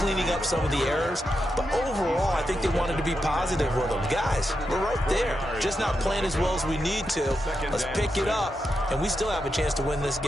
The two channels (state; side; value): normal; both; correlation 0.86